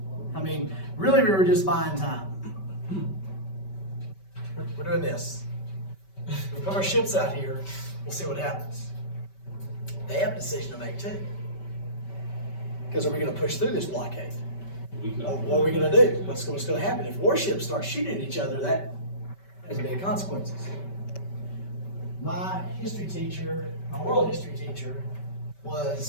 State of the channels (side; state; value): right; late; 5.2 ms